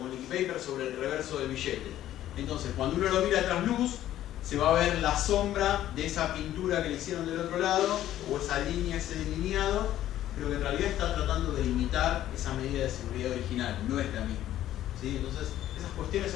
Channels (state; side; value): quieter; right; 12.7 dB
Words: liquid paper sobre el reverso del billete. Entonces, cuando uno lo mira a trasluz, se va a ver la sombra de esa pintura que le hicieron del otro lado, o esa línea, ese delineado, pero que en realidad está tratando de imitar esa medida de seguridad original, no es la misma, ¿sí? Entonces, esas cuestiones